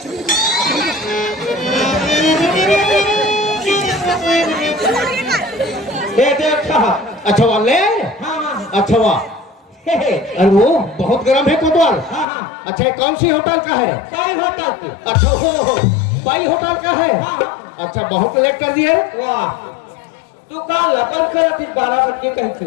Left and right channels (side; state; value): right; drops out; at 12.2 s